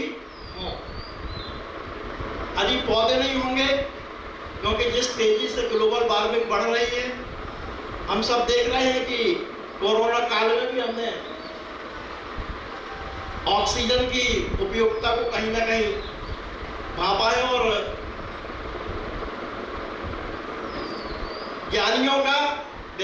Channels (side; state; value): both; identical; correlation 1.00